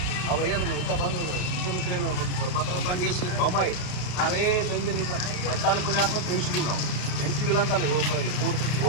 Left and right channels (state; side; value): late; right; 33 ms